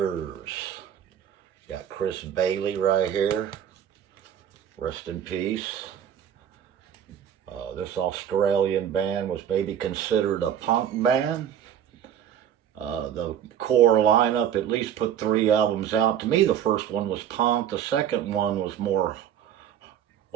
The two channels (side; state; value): left; quieter; 9.5 dB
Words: Got Chris Bailey right here. Rest in peace. This Australian band was maybe considered a punk band. The core lineup at least put 3 albums out. To me, the first one was punk. The second one was more,